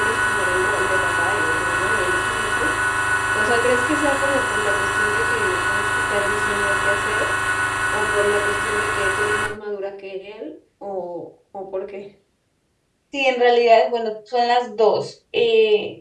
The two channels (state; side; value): identical; both; correlation 1.00